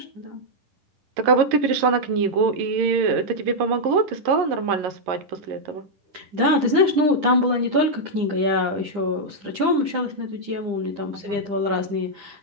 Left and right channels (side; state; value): left; late; 9.9 ms